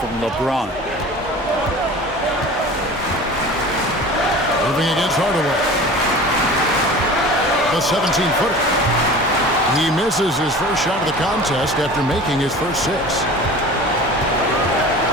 LeBron. Irving against Hardaway. The 17-footer. He misses his first shot of the contest after making his first 6.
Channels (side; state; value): both; normal; correlation 0.39